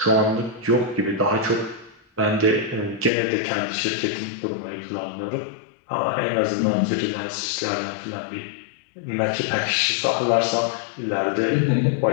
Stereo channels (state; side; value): drops out; right; at 3.1 s